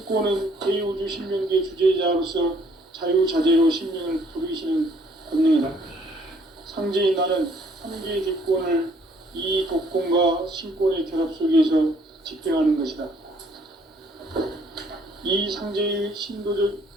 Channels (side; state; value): both; normal; correlation 0.63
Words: 대우주 신명계 주제자로서 자유자재로 신명을 부르시는 권능이다. 상제인 나는 삼계의 뒷권을 이 독권과 신권의 결합 속에서 집행하는 것이다. 이 상제의 신도적